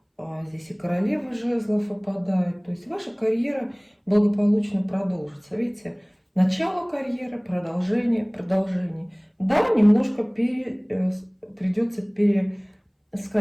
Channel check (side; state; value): both; identical; correlation 1.00